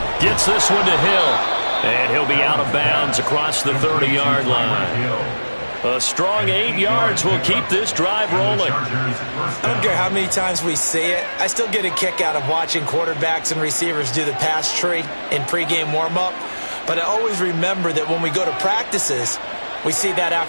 Gets this one to Hill. And he'll be out of bounds across the 30-yard line. A strong 8 yards will keep this drive rolling. I don't care how many times we see it. I still get a kick out of watching quarterbacks and receivers do the pass tree in pregame warm-up. But I always remember that when we go to practices, we see that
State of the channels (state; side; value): inverted; both; correlation -1.00